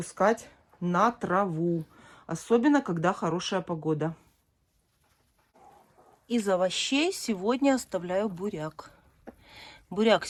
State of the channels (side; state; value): both; identical; correlation 1.00